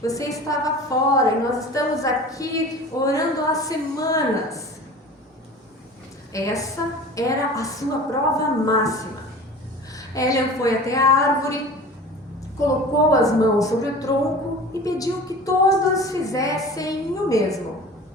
Você estava fora e nós estamos aqui orando há semanas. Essa era a sua prova máxima. Hélia foi até a árvore, colocou as mãos sobre o tronco e pediu que todos fizessem o mesmo.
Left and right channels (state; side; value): normal; both; correlation 0.39